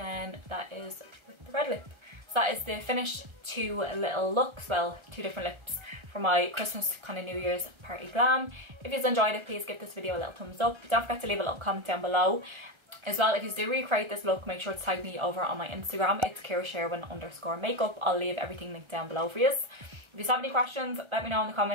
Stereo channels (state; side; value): late; left; 1.3 ms